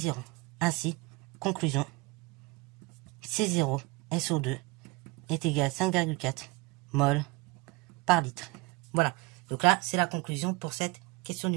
Ainsi, conclusion, C0 SO2 est égal à 5,4 mol par litre. Voilà. Donc là, c'est la conclusion pour cette question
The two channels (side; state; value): left; quieter; 23.8 dB